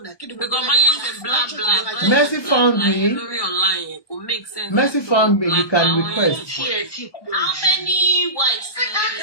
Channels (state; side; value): late; right; 1.2 ms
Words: Mercy found me. Mercy found me. You can request. How many wives? The